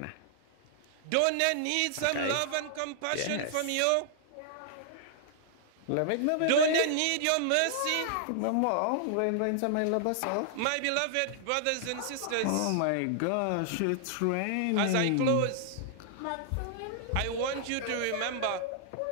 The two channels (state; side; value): different; both; correlation -0.01